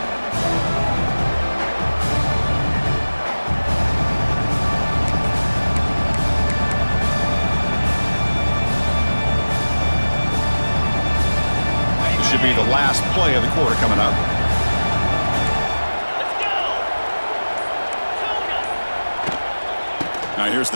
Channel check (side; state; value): both; inverted; correlation -1.00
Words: Should be the last play of the quarter coming up. Now here's